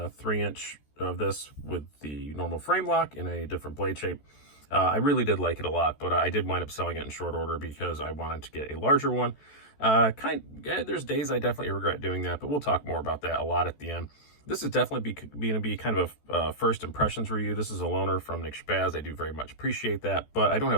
of this with the normal frame lock in a different blade shape. I really did like it a lot, but I did wind up selling it in short order because I wanted to get a larger one. There's days I definitely regret doing that, but we'll talk more about that a lot at the end. This is definitely going to be kind of a first impressions review. This is a loaner from Nick Spaz. I do very much appreciate that, but I don't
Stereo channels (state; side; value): late; right; 14 ms